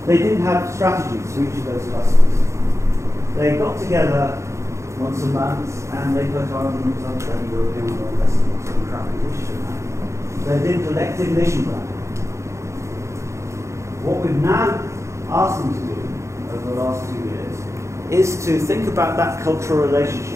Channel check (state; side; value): late; left; 0.14 ms